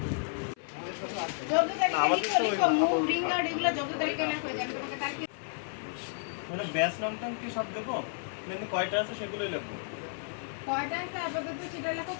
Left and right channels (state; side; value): silent; right; 56 dB below the other